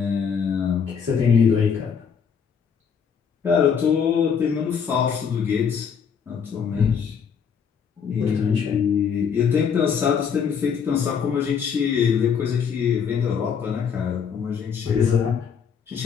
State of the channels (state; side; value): quieter; right; 6.9 dB